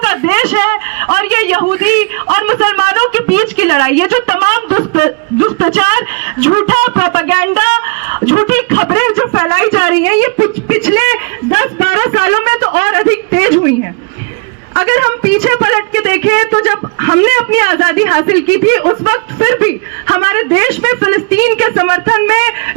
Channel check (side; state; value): left; quieter; 33.6 dB